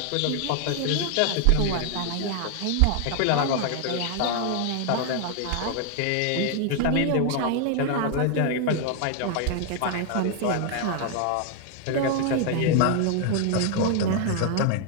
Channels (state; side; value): different; both; correlation 0.00